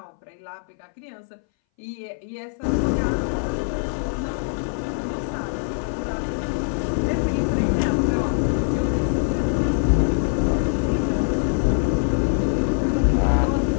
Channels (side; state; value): right; silent; 61 dB below the other